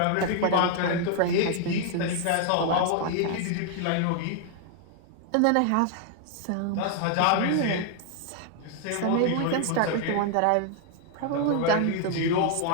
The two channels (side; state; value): both; different; correlation 0.00